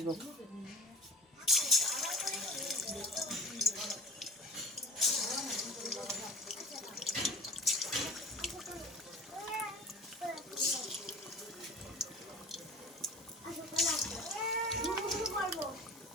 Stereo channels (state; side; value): normal; both; correlation 0.39